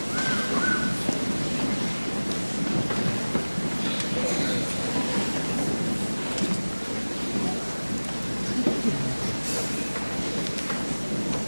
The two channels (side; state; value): both; inverted; correlation -1.00